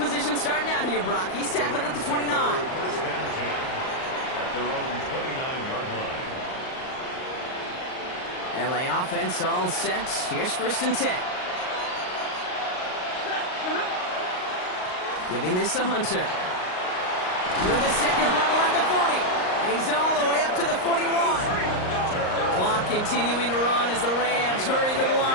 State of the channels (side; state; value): right; late; 38 ms